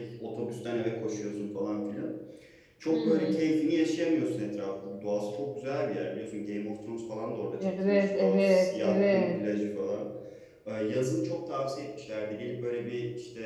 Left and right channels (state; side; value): identical; both; correlation 1.00